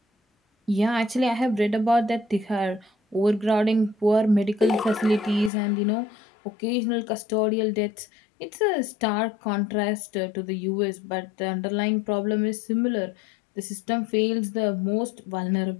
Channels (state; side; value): drops out; right; at 5.5 s